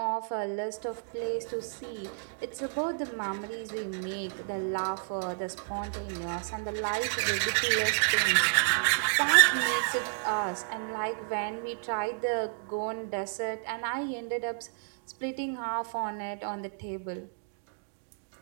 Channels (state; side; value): silent; left; digital silence